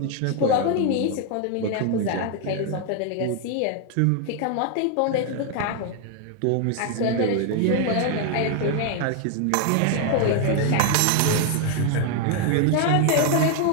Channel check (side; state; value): both; different; correlation 0.00